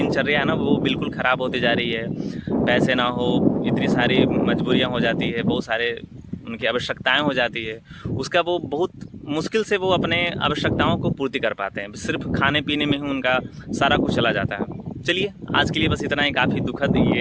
है ना वो बिल्कुल ख़राब होती जा रही है। पैसे ना हो, इतनी सारी मजबूरियां हो जाती है, बहुत सारे उनकी आवश्यकताएं हो जाती है, उसका वो बहुत मुश्किल से वो अपने आवश्यकताओं को पूर्ति कर पाते हैं। सिर्फ खाने पीने में ही उनका सारा कुछ चला जाता है। चलिए आज के लिए बस इतना ही, काफ़ी दुखद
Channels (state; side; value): identical; both; correlation 1.00